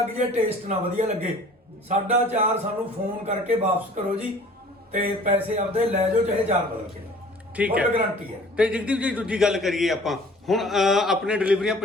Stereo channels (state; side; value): normal; both; correlation 0.49